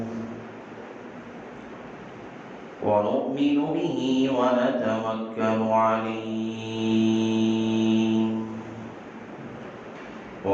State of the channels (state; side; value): identical; both; correlation 1.00